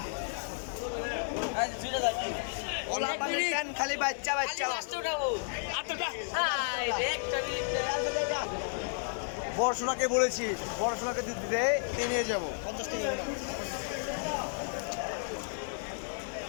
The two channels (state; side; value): silent; right; digital silence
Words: ওলা পানি কেন খালি বাচ্চা। পড়াশোনাকে বলেছি, পড়াশোনাকে দিতে নিয়ে যাবো। 50 টাকা।